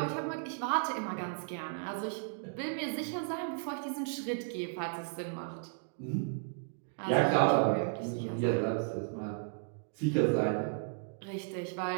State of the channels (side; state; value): left; silent; digital silence